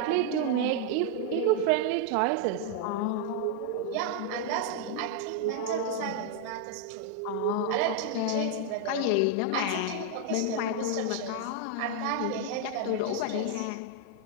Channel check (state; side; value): different; both; correlation 0.00